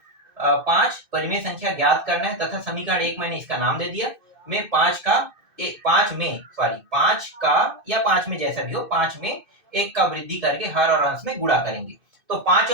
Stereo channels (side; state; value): left; late; 2.6 ms